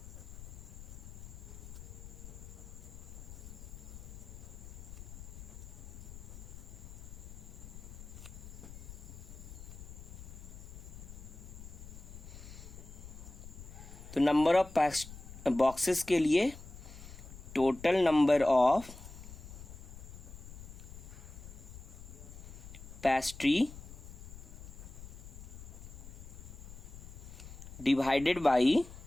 तो नंबर ऑफ बॉक्सेस के लिए total number of pastry divided by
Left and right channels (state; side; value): noise; left; rumble, 13 dB below the sound